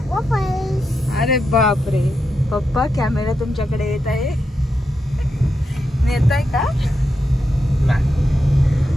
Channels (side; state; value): both; normal; correlation 0.86